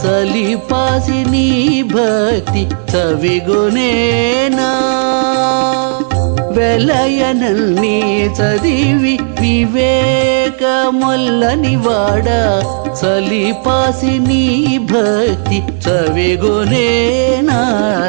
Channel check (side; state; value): left; silent; digital silence